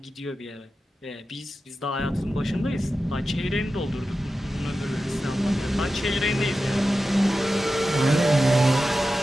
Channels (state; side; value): normal; both; correlation 0.93